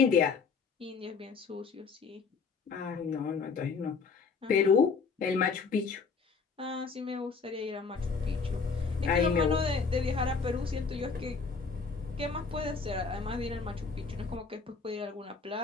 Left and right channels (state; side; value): quieter; right; 5.1 dB